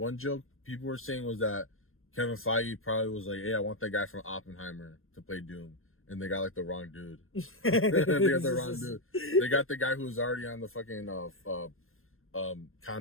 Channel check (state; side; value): late; right; 0.60 ms